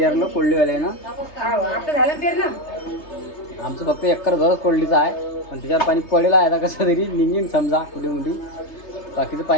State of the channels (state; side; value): late; right; 3.3 ms